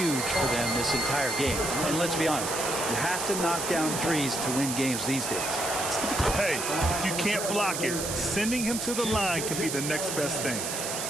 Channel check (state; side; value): noise; right; hiss, 3 dB below the sound